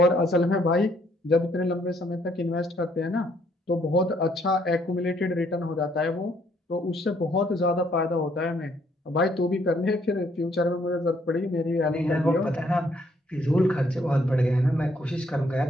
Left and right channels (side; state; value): both; normal; correlation 0.68